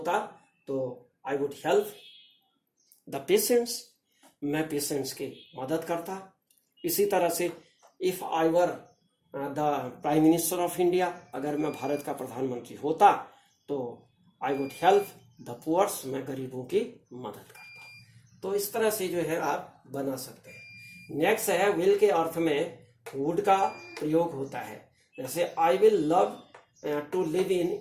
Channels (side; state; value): both; identical; correlation 1.00